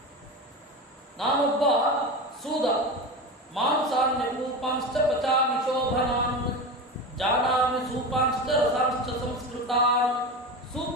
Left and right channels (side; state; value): both; normal; correlation 0.25